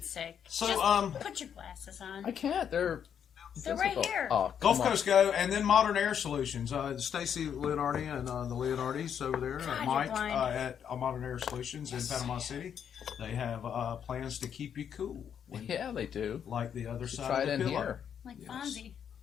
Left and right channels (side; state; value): right; quieter; 8.3 dB